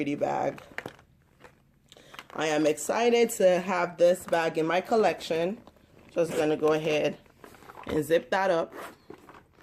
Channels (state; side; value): identical; both; correlation 1.00